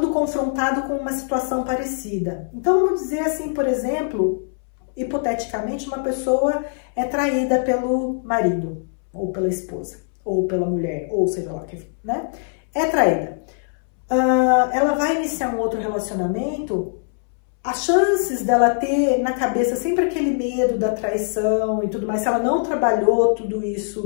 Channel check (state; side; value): silent; right; 64 dB below the other